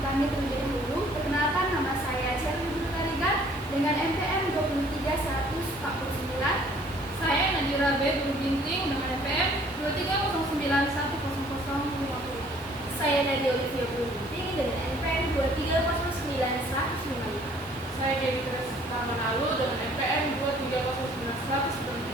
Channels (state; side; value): normal; both; correlation 0.58